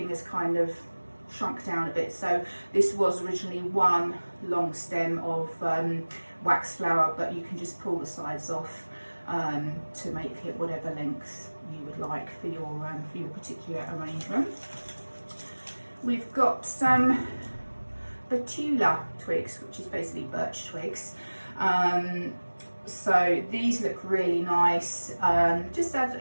is kind of shrunk down a bit. So this was originally one long stem of wax flower, but you can just pull the sides off to make it whatever length you would like for your particular arrangement. We've got some betula twigs, which is basically birch twigs. So these look really nice. Just add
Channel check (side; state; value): both; inverted; correlation -1.00